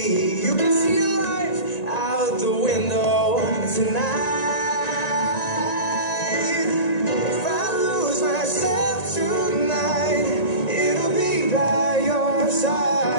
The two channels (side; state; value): right; late; 1.9 ms